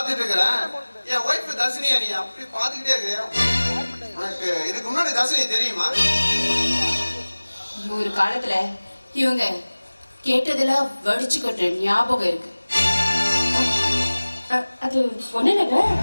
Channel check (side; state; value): both; inverted; correlation -1.00